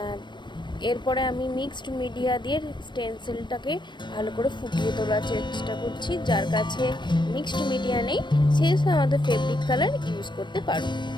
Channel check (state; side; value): late; right; 0.22 ms